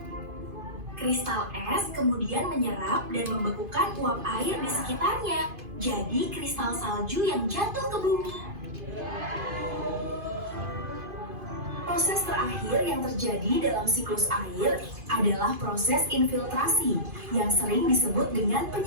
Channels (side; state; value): left; late; 2.5 ms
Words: Kristal es kemudian menyerap dan membekukan uap air di sekitarnya, jadi kristal salju yang jatuh ke bumi. Proses terakhir yang terjadi dalam siklus air adalah proses infiltrasi yang sering disebut dengan